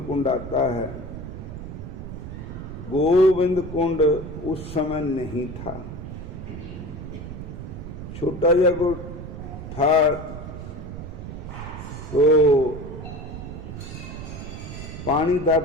कुंड आता है। गोविंद कुंड उस समय नहीं था, छोटा जगह था। तो पानी था,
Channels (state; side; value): noise; right; rumble, 9 dB below the sound